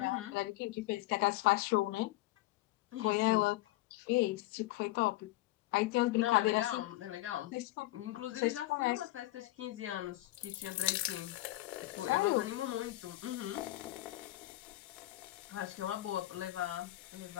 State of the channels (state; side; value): quieter; right; 17.7 dB